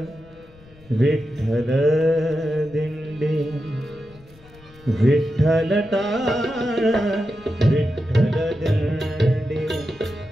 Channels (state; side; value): noise; left; rumble, 25 dB below the sound